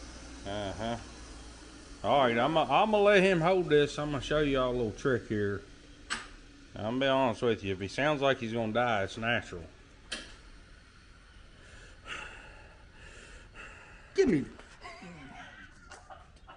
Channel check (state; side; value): identical; both; correlation 1.00